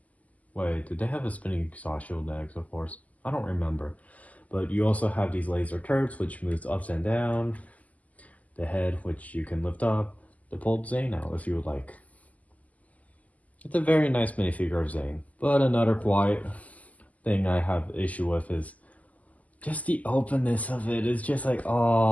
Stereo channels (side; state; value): right; late; 0.075 ms